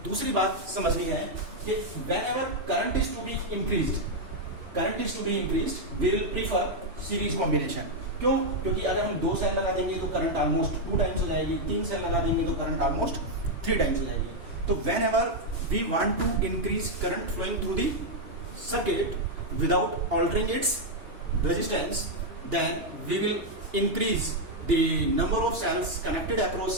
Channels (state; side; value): late; left; 2.8 ms